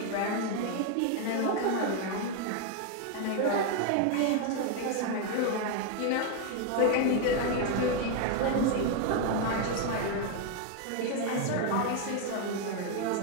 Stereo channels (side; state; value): both; different; correlation 0.01